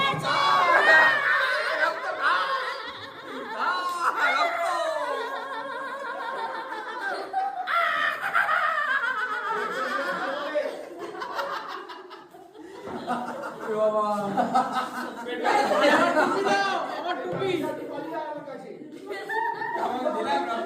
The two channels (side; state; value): both; identical; correlation 1.00